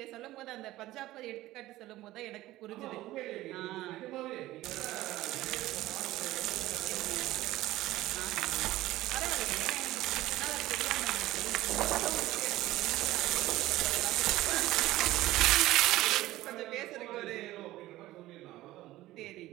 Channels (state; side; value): quieter; left; 16.4 dB